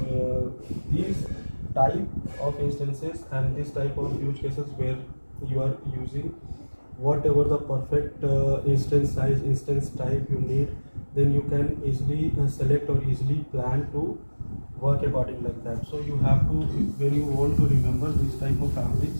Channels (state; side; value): inverted; both; correlation -1.00